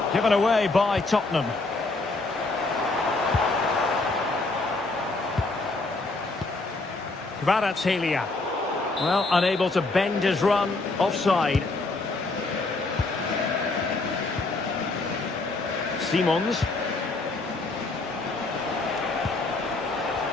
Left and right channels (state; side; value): quieter; right; 3.3 dB